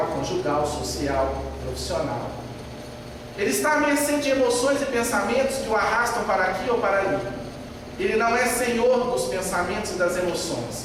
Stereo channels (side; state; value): both; identical; correlation 1.00